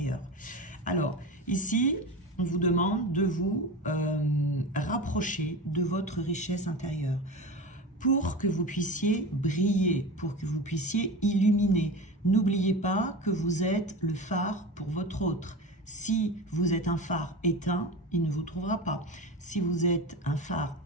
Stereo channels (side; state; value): both; normal; correlation 0.28